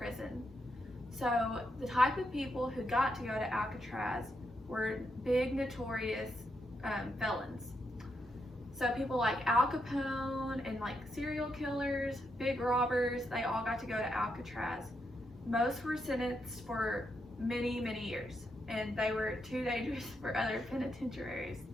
So the type of people who got to go to Alcatraz were big, notorious felons. So people like Al Capone and like serial killers, big robbers, they all got to go to Alcatraz. Most were sentenced for many, many years, and they were too dangerous for other penitentiaries.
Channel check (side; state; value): both; normal; correlation 0.82